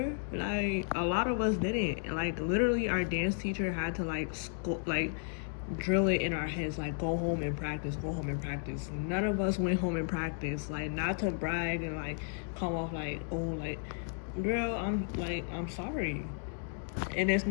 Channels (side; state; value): right; silent; digital silence